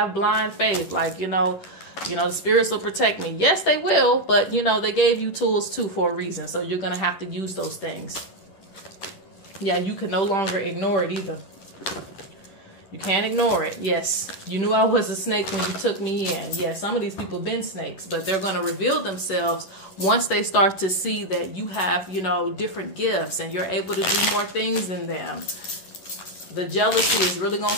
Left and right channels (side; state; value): right; late; 10 ms